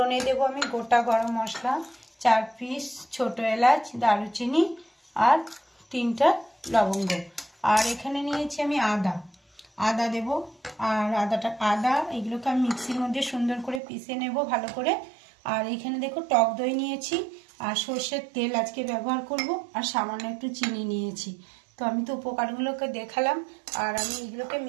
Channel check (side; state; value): left; drops out; at 13.8 s